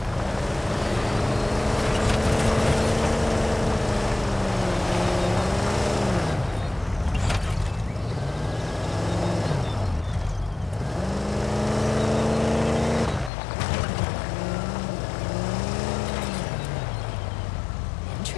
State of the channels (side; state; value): right; drops out; at 13.3 s